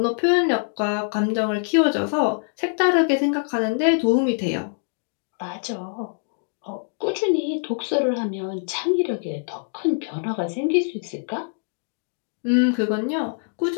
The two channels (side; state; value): right; silent; 63 dB below the other